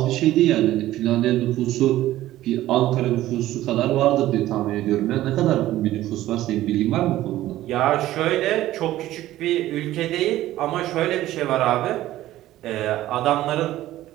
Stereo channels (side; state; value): left; quieter; 14.8 dB